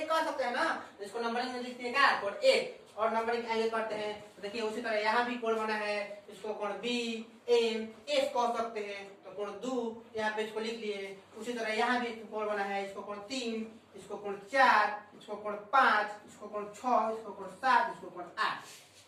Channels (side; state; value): both; identical; correlation 1.00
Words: कह सकते हैं ना, तो इसको नंबरिंग में लिखते हैं क्या, कोण एक, और नंबरिंग आगे करते हैं। तो देखिए, उसी तरह यहाँ भी कोण बना है, इसको कोण बी एम एस कह सकते हैं, तो कोण दो यहाँ पे इसको लिख लिए। उसी तरह यहाँ भी कोण बना है, इसको कोण 3, इसको कोण 4, इसको कोण 5, इसको कोण 6, इसको कोण 7, इसको कोण 8।